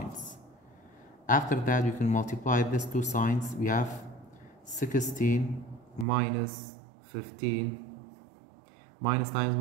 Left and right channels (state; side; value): drops out; left; at 6.1 s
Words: After that we can multiply these two signs. We have 16 minus 15. Minus times